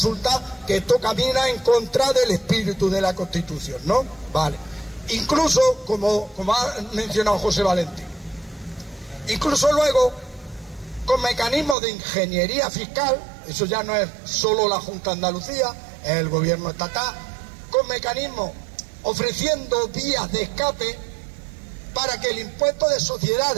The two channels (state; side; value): drops out; left; at 11.8 s